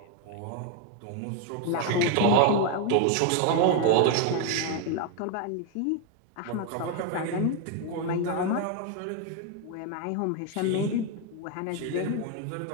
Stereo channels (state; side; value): different; both; correlation 0.01